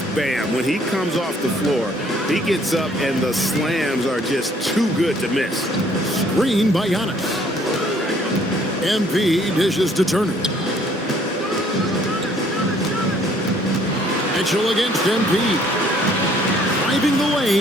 Bam. When he comes off the floor, he gets up and the slams are just too good to miss. Screen by Giannis. MP dishes to Turner. Mitchell against MP. Driving the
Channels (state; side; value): normal; both; correlation 0.62